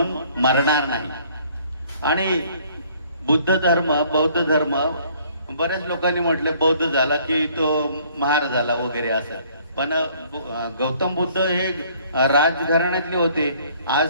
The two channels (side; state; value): both; inverted; correlation -0.59